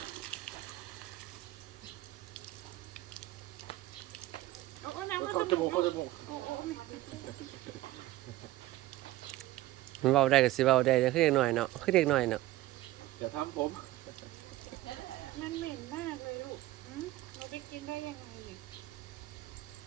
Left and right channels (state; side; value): quieter; left; 16.8 dB